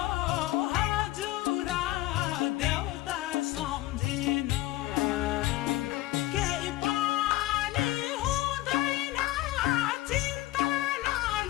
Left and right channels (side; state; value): right; quieter; 16.5 dB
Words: हजुर देउता सम्झिनु केही पनि हुँदैन चिन्ता